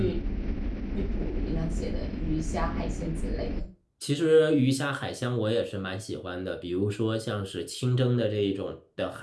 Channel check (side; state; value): both; identical; correlation 1.00